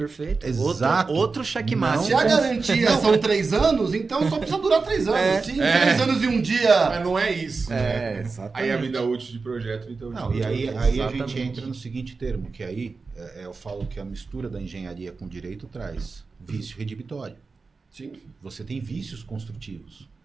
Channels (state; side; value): quieter; left; 4.3 dB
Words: Exato. Outro checkmate. Se a garantia são 3 anos, então só precisa durar 3 anos. Se em 3 anos e um dia... Mas não é isso, né? Exatamente. Aí a vida útil de projeto, então... Não, e aí a gente entra no seguinte termo, que aí eu falo que a mistura da engenharia com o direito traz vício redibitório. Sim. Você tem vícios construtivos.